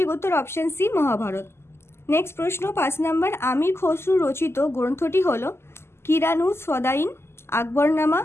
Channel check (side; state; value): right; late; 0.12 ms